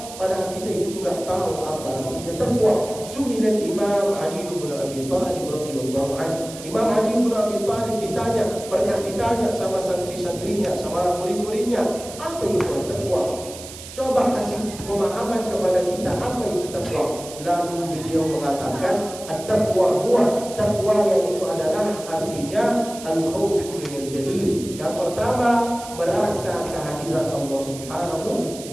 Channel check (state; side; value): noise; right; hiss, 14 dB below the sound